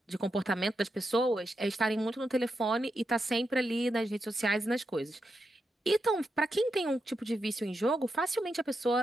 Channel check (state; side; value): normal; both; correlation 0.85